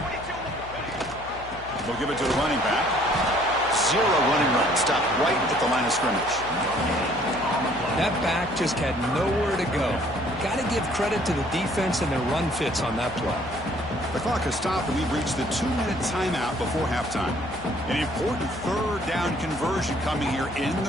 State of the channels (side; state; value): left; noise; hum, 16 dB below the sound